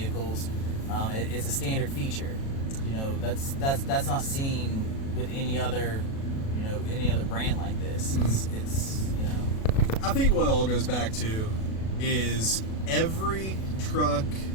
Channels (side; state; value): right; late; 37 ms